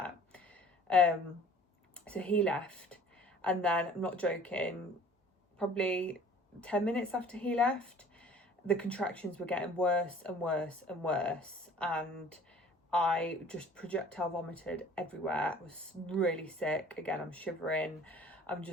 So he left, and then, I'm not joking, probably 10 minutes after he left, the contractions were getting worse and worse and worse, and I just projectile vomited everywhere. I was really sick. Again, I'm shivering. I'm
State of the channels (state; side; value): normal; both; correlation 0.50